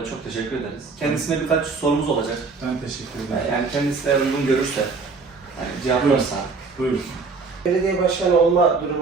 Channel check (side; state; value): left; quieter; 4.4 dB